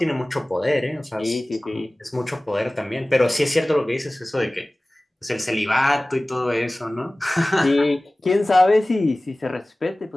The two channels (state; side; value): normal; both; correlation 0.98